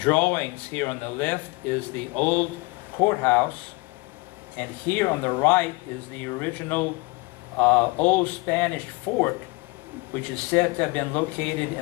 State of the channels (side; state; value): right; quieter; 25.1 dB